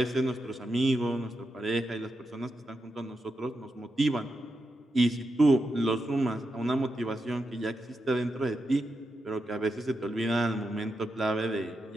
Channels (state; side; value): normal; both; correlation 0.87